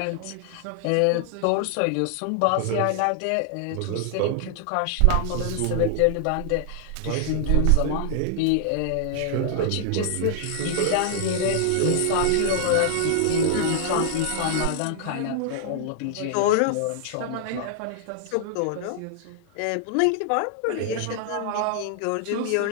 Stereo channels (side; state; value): both; different; correlation -0.01